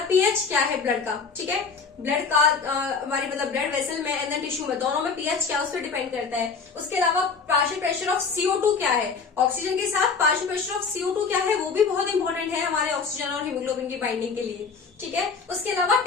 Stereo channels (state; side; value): quieter; right; 5.2 dB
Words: पीएच क्या है ब्लड का, ठीक है। ब्लड का हमारी मतलब ब्लड वेसल में एंड टिश्यू में, दोनों में पीएच क्या है उस पर डिपेंड करता है। उसके अलावा पार्शियल प्रेशर ऑफ CO2 क्या है, ऑक्सीजन के साथ पार्शियल प्रेशर ऑफ CO2 क्या है, वो भी बहुत इंपॉर्टेंट है हमारे ऑक्सीजन और हीमोग्लोबिन की बाइंडिंग के लिए, ठीक है। उसके अलावा